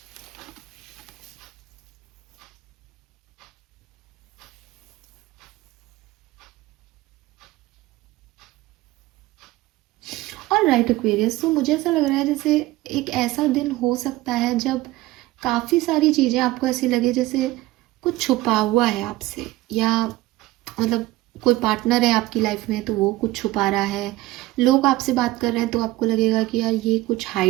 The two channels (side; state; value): left; quieter; 17.9 dB